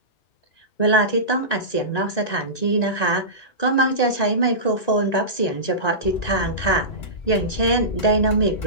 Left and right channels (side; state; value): right; late; 1.9 ms